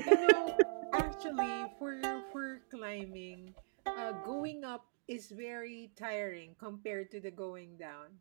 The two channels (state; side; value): silent; left; digital silence